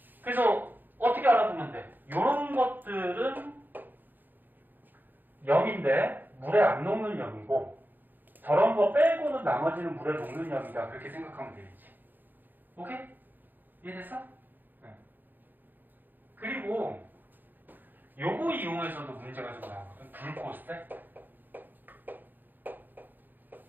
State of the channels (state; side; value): late; left; 0.088 ms